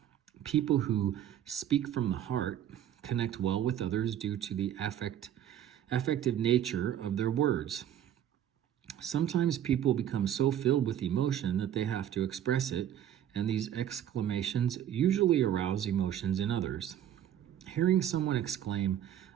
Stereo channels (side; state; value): left; quieter; 10.6 dB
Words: People who speak from the heart connect well with others due to the affective nature of their words. Sometimes people become so filled with emotion that they have to express it, and these exclamations usually arouse emotions in others. Hearing someone exclaim,